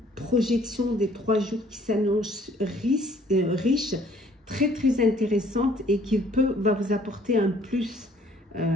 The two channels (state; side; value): normal; both; correlation 0.59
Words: projection des 3 jours qui s'annonce riche, très très intéressante et qui va vous apporter un plus